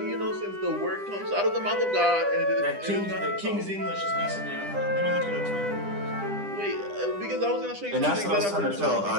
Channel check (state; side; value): late; left; 10 ms